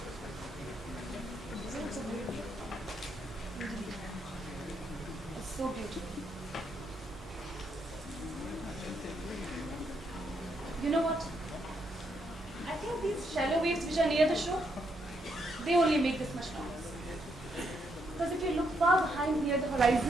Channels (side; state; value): both; normal; correlation 0.77